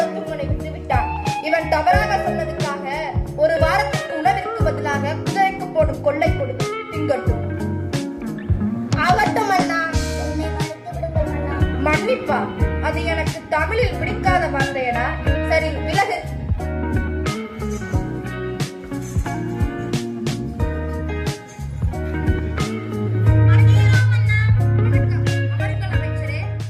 விட்டுவிட்டான். இவன் தவறாக சொன்னதுக்காக ஒரு வாரத்துக்கு உணவிற்கு பதிலாக குதிரைக்கு போடும் கொள்ளை கொடுத்து திங்கட்டும். ஆகட்டும் அண்ணா. மன்னிப்பா, அது எனக்கு தமிழில் பிடிக்காத வார்த்தையடா. சரி, விலகு.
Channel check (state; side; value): identical; both; correlation 1.00